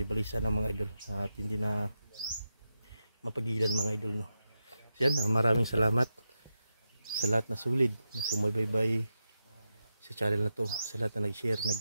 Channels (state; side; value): inverted; both; correlation -0.88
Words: balisa ng mga idol at hindi na mapagilan mga idol, no? So yan, maraming salamat sa lahat na sulid na sumubaybay sa channel na to, sa lahat na nag-share,